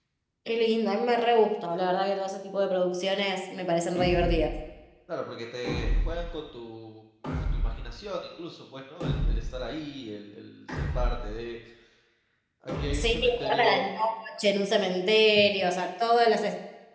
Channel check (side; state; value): both; identical; correlation 1.00